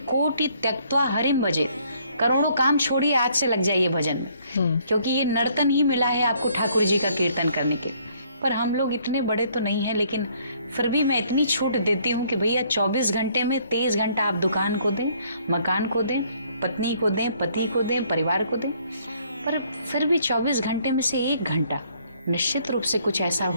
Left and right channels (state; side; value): inverted; both; correlation -0.64